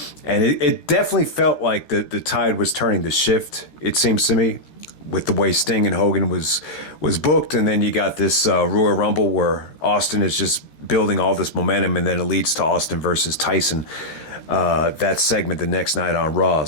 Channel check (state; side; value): late; right; 13 ms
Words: And it definitely felt like the tide was turning to shift, it seems to me, with the way Sting and Hogan was booked. And then you got this Royal Rumble where Austin is just building all this momentum, and then it leads to Austin versus Tyson, that segment the next night on Raw.